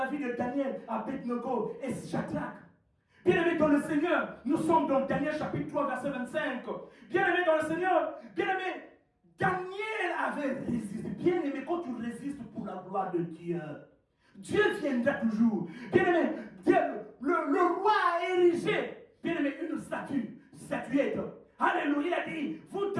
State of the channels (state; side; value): identical; both; correlation 1.00